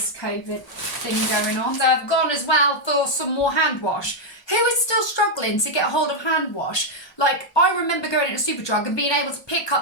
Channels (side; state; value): right; late; 1.2 ms